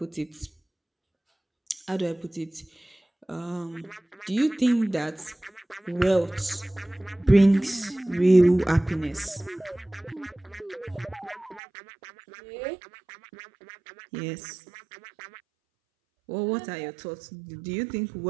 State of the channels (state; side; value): drops out; left; at 11.6 s